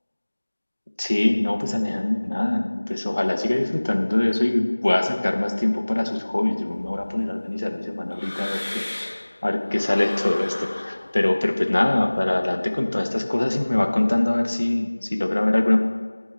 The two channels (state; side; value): inverted; both; correlation -1.00